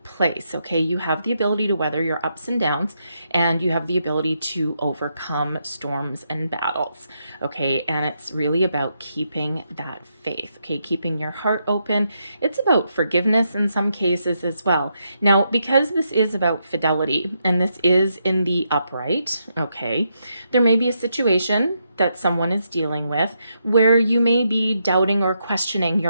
place, okay? You have the ability to weather your ups and downs, and you have the ability to overcome storms and battles, okay? And it's really about keeping that faith, okay? Keeping your heart open. It's about forgiveness in some cases as well. Now, because this is about fidelity, and this is in the upright, okay, there may be a situation that someone is dealing with where you may be doubting or questioning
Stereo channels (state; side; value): inverted; both; correlation -0.80